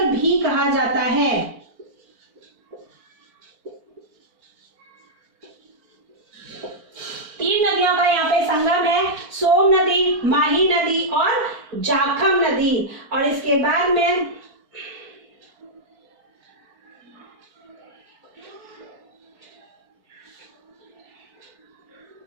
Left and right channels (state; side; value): late; left; 4.4 ms